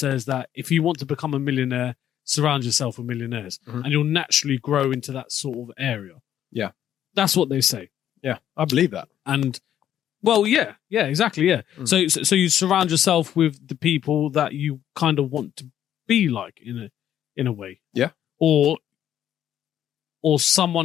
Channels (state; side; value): quieter; right; 10.7 dB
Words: that if you want to become a millionaire, surround yourself with millionaires, and you'll naturally grow into that sort of area. Yeah, that's what they say. Yeah, I believe that. And well, yeah, exactly, yeah. So you surround yourself with the people that you kind of want to be like in a way. Yeah, or